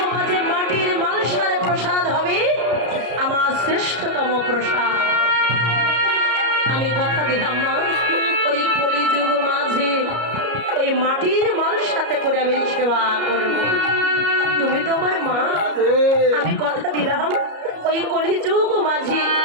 মাঝে মাটির মালসার প্রসাদ হবে আমার শ্রেষ্ঠতম প্রসাদ। আমি কথা দিলাম মা, ওই কলিযুগ মাঝে ওই মাটির মালসাতে করে আমি সেবা করব। তুমি তো আমার মা, আমি কথা দিলাম ওই কলিযুগ মাঝে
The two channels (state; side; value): late; left; 33 ms